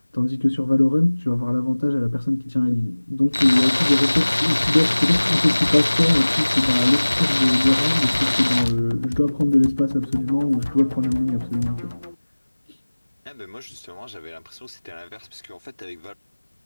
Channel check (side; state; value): both; inverted; correlation -1.00